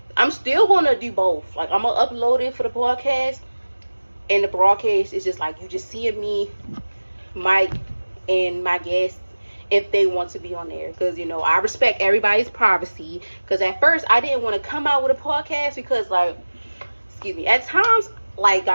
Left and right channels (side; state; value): both; inverted; correlation -1.00